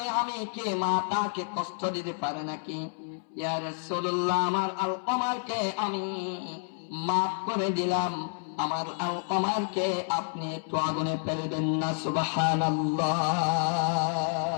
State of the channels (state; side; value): silent; right; 58 dB below the other